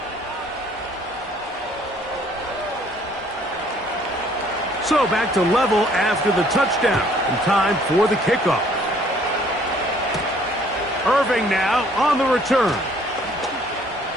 So back to level after the touchdown, and time for the kickoff. Irving now on the return.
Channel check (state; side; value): normal; both; correlation 0.60